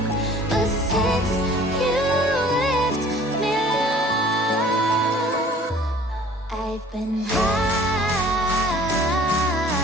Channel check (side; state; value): both; normal; correlation 0.51